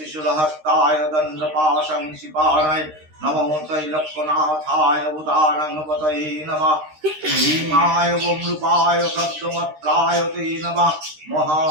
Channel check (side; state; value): left; late; 13 ms